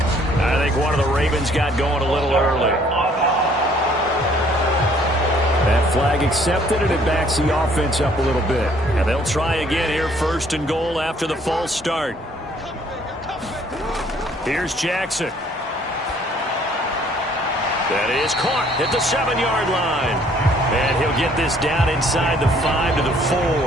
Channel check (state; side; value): normal; both; correlation 0.61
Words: I think one of the Ravens got going a little early. That flag accepted, and it backs the offense up a little bit. And they'll try again here, 1st and goal after the false start. Here's Jackson. That is caught at the 7-yard line. And he'll get this down inside the 5 to the